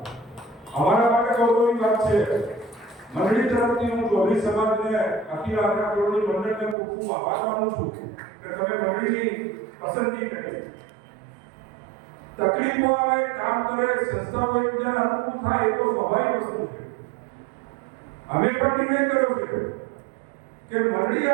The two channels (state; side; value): drops out; left; at 6.8 s